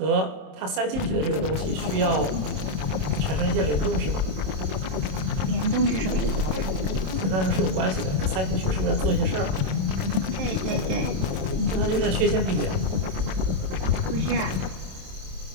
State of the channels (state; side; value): late; left; 27 ms